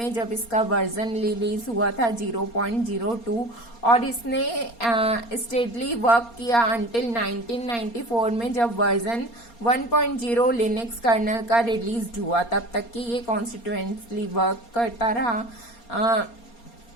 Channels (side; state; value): right; late; 4.3 ms